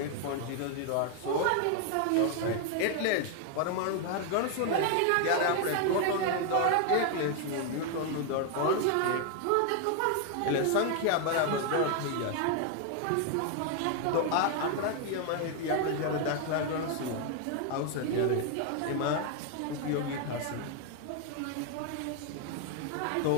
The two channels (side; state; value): both; different; correlation 0.00